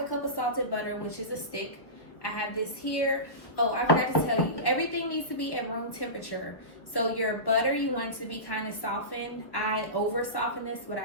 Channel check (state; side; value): late; right; 1.0 ms